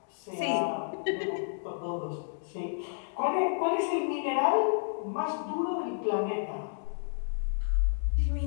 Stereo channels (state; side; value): silent; right; digital silence